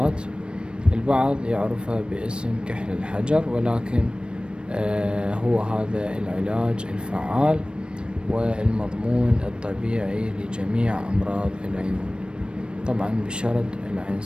البعض يعرفه باسم كحل الحجر، ولكن هو هذا العلاج الفعال والمضمون الطبيعي لجميع أمراض العيون، طبعا بشرط العين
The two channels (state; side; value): late; left; 0.055 ms